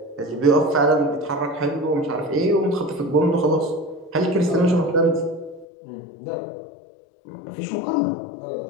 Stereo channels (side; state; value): right; drops out; at 5.7 s